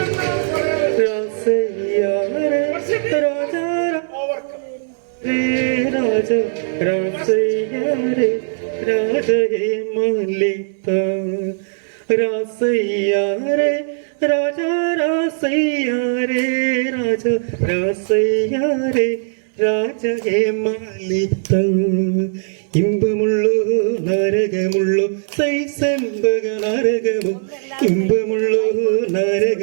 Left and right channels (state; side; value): silent; left; digital silence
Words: ഇമ്പമുള്ളോ നരകമുള്ളോ സൈസംബക നരകമോ, ഇമ്പമുള്ളോ